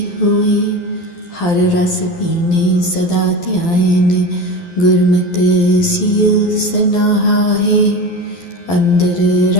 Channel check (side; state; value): right; late; 12 ms